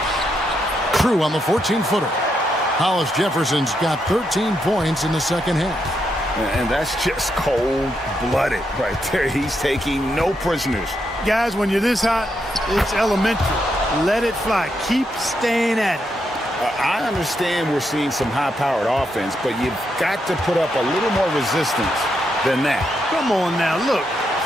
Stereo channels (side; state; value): both; normal; correlation 0.81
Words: True on the 14-footer. Hollis Jefferson's got 13 points in the second half. And that's just cold-blooded right there. He's taking no prisoners. Guys, when you're this hot, it's elementary. Let it fly. Keep staying at it. I understand we're seeing some high-powered offense, but you've got to put up a little more resistance than that. Come on now, look.